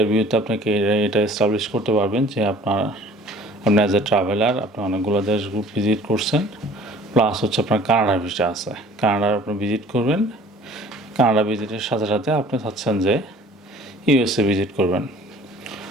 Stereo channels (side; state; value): both; normal; correlation 0.50